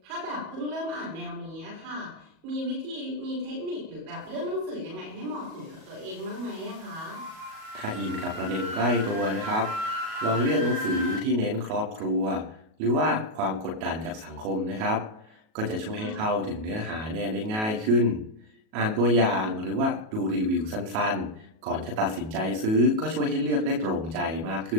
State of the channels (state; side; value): late; left; 37 ms